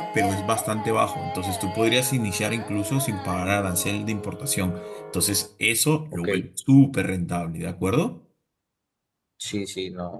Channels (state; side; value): identical; both; correlation 1.00